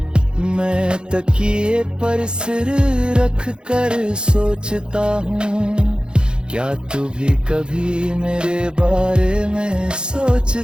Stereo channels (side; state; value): left; late; 0.050 ms